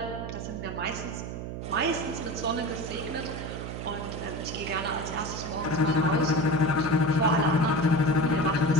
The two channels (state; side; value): noise; right; hum, 7 dB below the sound